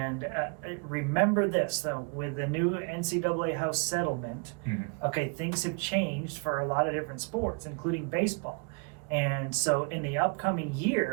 remember this, though, with the new NCAA House settlement, okay, things have changed for a lot of different sports, including baseball. And so in the upcoming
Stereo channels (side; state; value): left; quieter; 36.4 dB